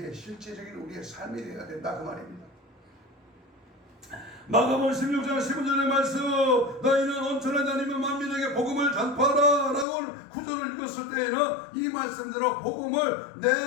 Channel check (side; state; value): right; drops out; at 9.9 s